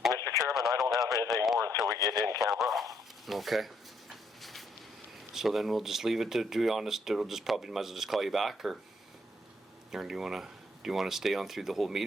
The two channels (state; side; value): normal; both; correlation 0.72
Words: Mr. Chairman, I don't have anything more until we get in camera. Okay. So then we'll just leave it to be honest. It'll just probably might as well just call you back, or do you want to stay on through the whole